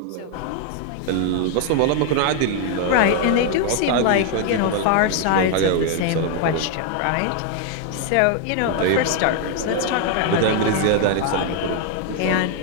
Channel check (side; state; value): both; different; correlation 0.00